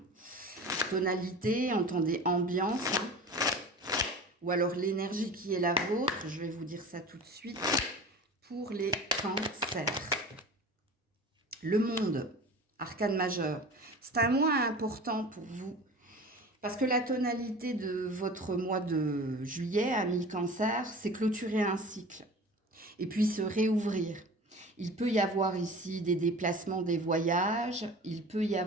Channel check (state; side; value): normal; both; correlation 0.37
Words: Tonalité, entendez ambiance, ou alors l'énergie qui est la vôtre. Je vais vous dire ça tout de suite pour les cancers. Le monde, arcane majeur, c'est un mois important pour vous parce que la tonalité de votre mois de juillet, amis cancer, c'est clôturer un cycle et puis se réouvrir. Il peut y avoir ici des déplacements, des voyages, il peut y